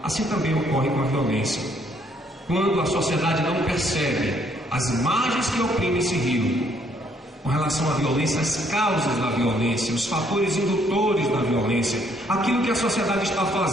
Assim também ocorre com a violência. Quando a sociedade não percebe as margens que oprimem esse rio, com relação à violência, as causas da violência, os fatores indutores da violência, aquilo que a sociedade está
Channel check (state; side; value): normal; both; correlation 0.67